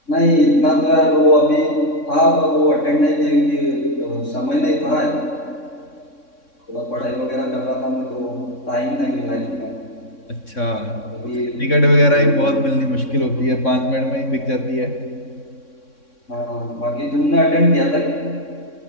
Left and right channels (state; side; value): late; right; 3.6 ms